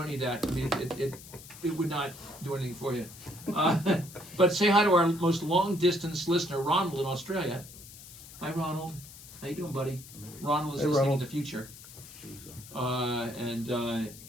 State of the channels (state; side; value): noise; left; hiss, 17 dB below the sound